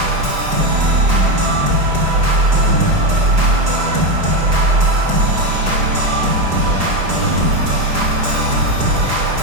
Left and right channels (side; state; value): left; late; 4.9 ms